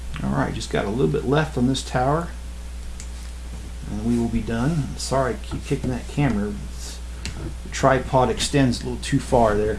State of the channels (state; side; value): identical; both; correlation 1.00